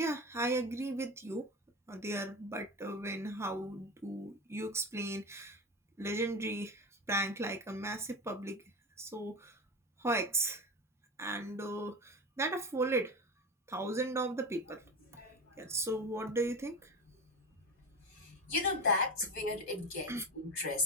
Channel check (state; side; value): normal; both; correlation 0.24